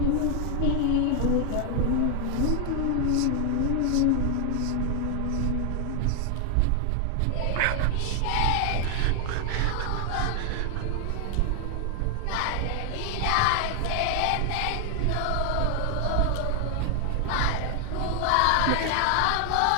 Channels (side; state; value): both; different; correlation 0.00